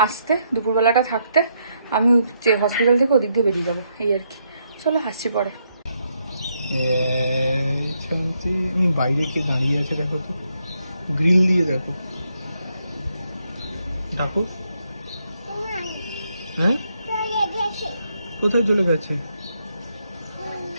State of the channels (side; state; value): both; inverted; correlation -0.77